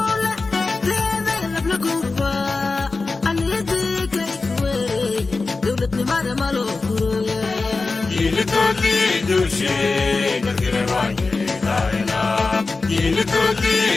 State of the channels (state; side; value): quieter; right; 3.8 dB